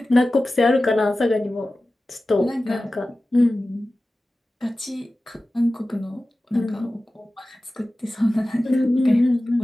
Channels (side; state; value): both; normal; correlation 0.96